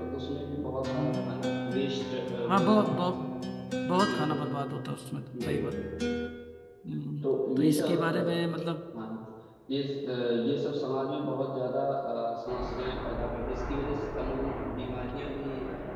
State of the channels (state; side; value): identical; both; correlation 1.00